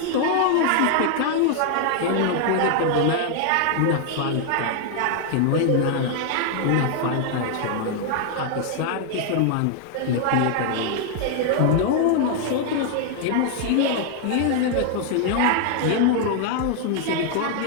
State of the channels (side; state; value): both; different; correlation 0.00